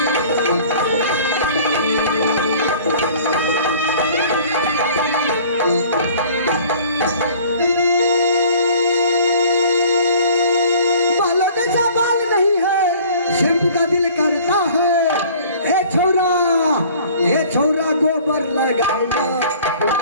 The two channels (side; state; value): both; inverted; correlation -0.50